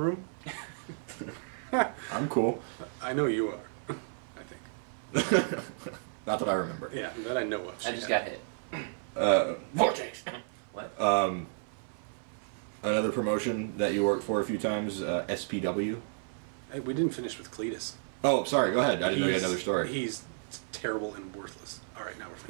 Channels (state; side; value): silent; left; 56 dB below the other